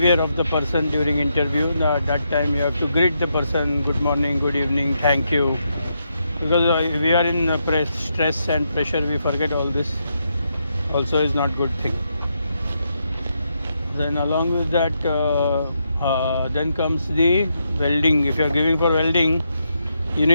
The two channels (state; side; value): inverted; both; correlation -0.81